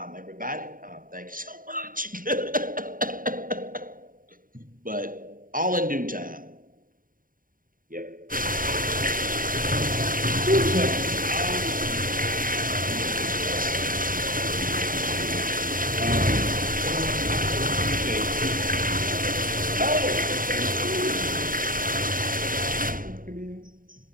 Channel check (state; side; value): late; left; 0.40 ms